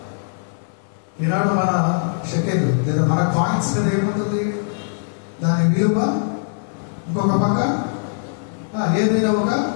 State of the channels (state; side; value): silent; right; digital silence